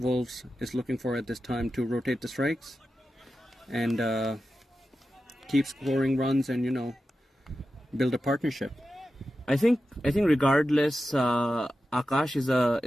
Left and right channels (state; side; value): normal; both; correlation 0.92